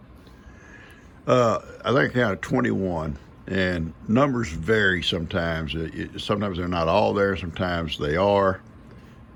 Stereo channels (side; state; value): both; identical; correlation 1.00